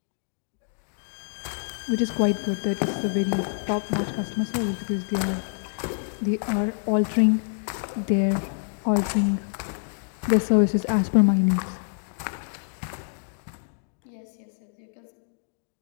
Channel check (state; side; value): silent; right; digital silence